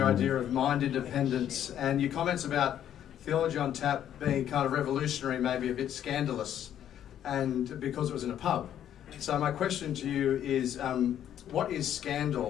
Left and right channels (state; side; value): quieter; right; 10.5 dB